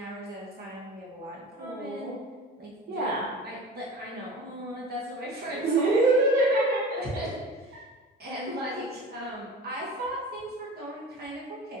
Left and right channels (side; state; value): both; normal; correlation 0.36